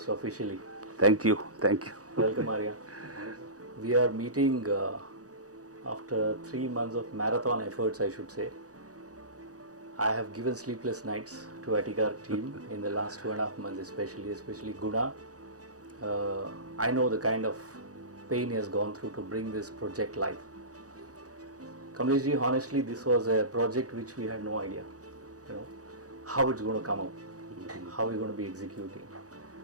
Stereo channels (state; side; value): late; left; 0.67 ms